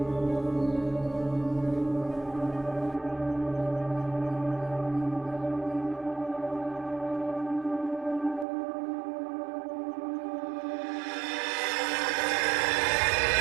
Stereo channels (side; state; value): left; drops out; at 8.5 s